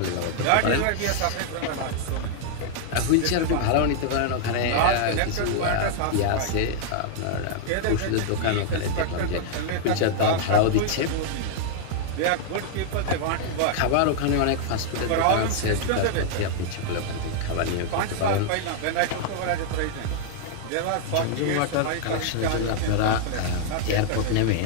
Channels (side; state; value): both; different; correlation -0.01